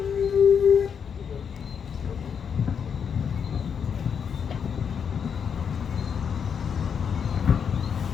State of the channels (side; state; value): right; quieter; 7.1 dB